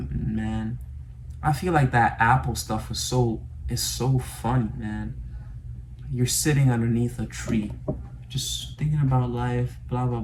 man. I feel like that apple stuff is so funny, man. You're sitting underneath a tree, just thinking about life, blah, blah,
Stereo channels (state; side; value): identical; both; correlation 1.00